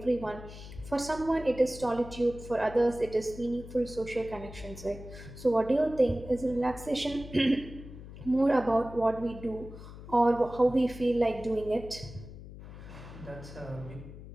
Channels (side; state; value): left; noise; hum, 14 dB below the sound